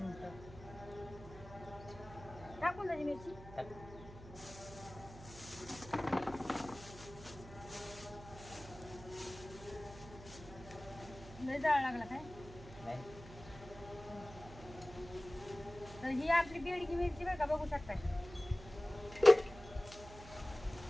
टाकून द्यायची मिरची. लय जाळ लागला काय तर ही आपली बेडकी मिरची बरं का बघू शकता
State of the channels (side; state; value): right; noise; hum, 15 dB below the sound